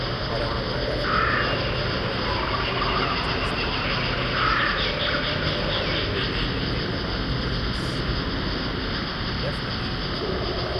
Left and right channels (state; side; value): identical; both; correlation 1.00